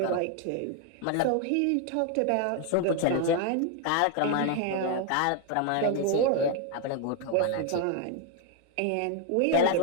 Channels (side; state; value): both; different; correlation 0.00